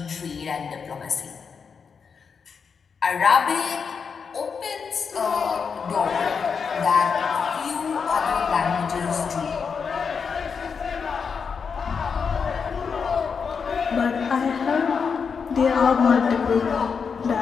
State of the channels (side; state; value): right; quieter; 5.9 dB